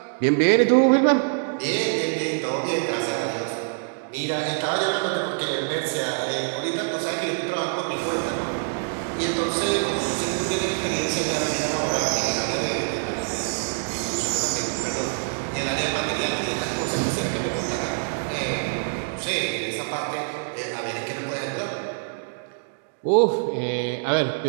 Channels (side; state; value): left; silent; digital silence